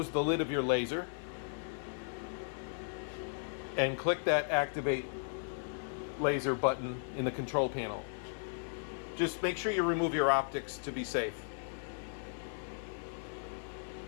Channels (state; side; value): silent; right; digital silence